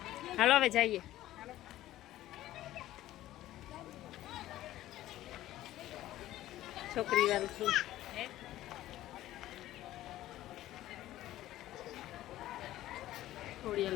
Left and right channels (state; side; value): quieter; right; 14.5 dB